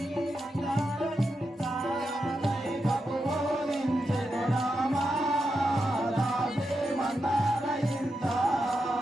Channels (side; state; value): both; normal; correlation 0.86